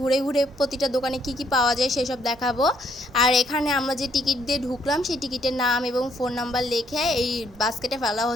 ঘুরে প্রতিটা দোকানে কি কি পাওয়া যায় সেসব দেখাবো। আর এখানে আমরা যে টিকিট দিয়ে ঢুকলাম সেই টিকিটের নাম এবং ফোন নাম্বার লিখে এই বাস্কেটে ফেলা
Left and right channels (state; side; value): normal; both; correlation 0.70